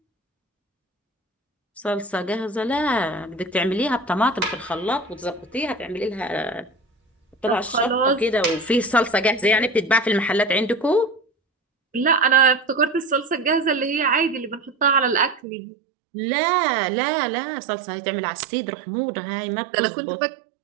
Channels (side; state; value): left; drops out; at 15.4 s